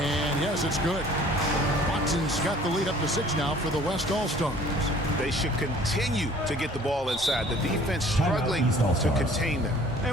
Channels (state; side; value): normal; both; correlation 0.52